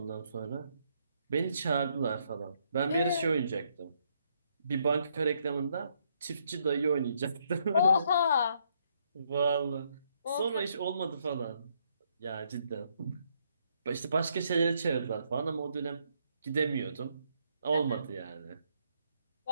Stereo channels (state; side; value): inverted; both; correlation -0.73